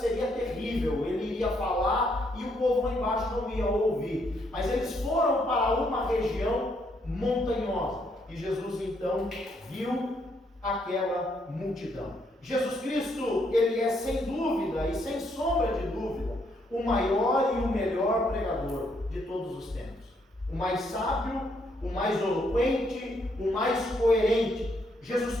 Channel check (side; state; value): both; normal; correlation 0.73